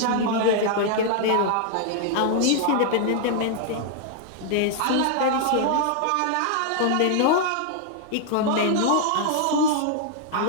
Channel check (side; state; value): both; different; correlation -0.01